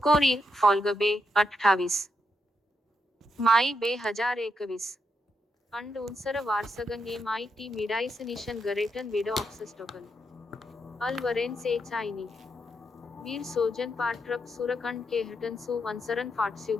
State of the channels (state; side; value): normal; both; correlation 0.82